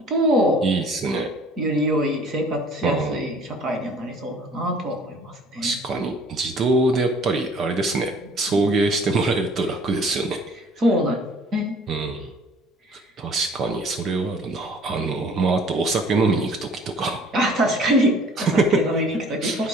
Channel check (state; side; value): normal; both; correlation 0.53